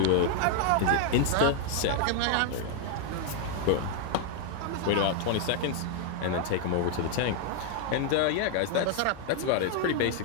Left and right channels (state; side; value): different; both; correlation 0.00